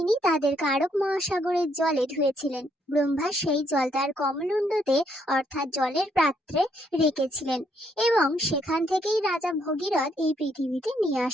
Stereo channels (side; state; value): both; normal; correlation 0.72